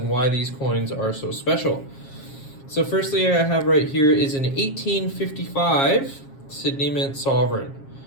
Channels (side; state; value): right; late; 7.4 ms